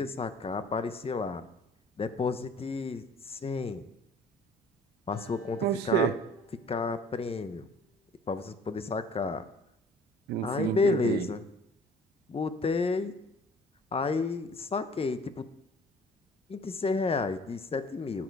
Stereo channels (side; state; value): both; normal; correlation 0.51